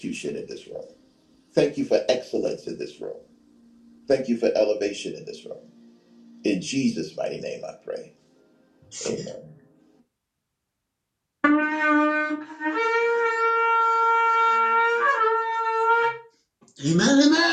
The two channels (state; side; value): identical; both; correlation 1.00